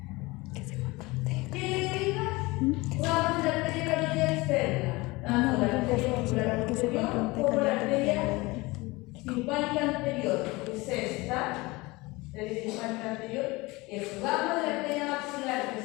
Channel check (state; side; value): quieter; right; 22.7 dB